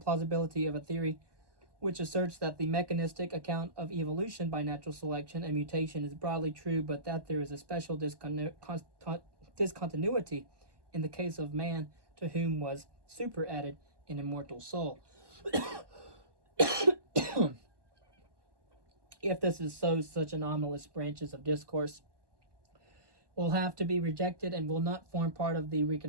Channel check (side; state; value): left; late; 1.1 ms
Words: of a theory which asserts that the mechanistic account of evolution by natural selection and mutation is broadly true, but that there is a special discontinuity in the case of man, to whom was superadded an immortal soul. If this is so, such anomalous branches of discourse will have to be rejected and will not form part of the